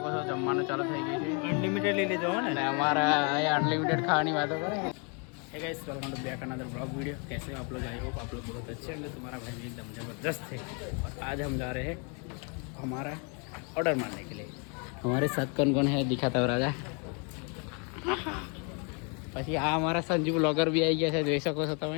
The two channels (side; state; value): right; quieter; 36.0 dB